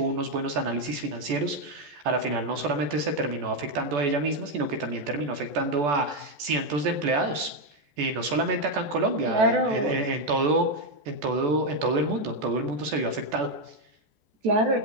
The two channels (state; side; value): late; left; 14 ms